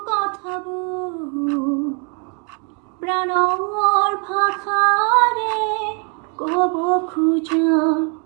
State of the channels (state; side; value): quieter; left; 37.7 dB